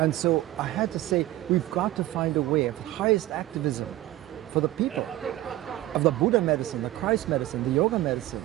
so I had to say, we've got to find a way of highest activism for the people, of the Buddha medicine, the Christ medicine, the yoga medicine,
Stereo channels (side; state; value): left; quieter; 15.7 dB